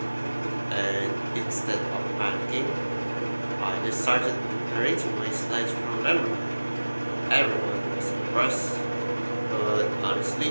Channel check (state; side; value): inverted; both; correlation -1.00